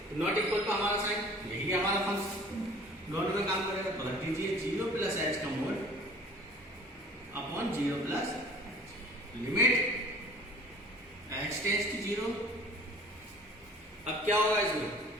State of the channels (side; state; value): both; normal; correlation 0.48